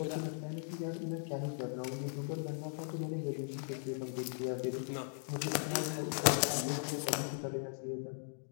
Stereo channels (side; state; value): right; silent; digital silence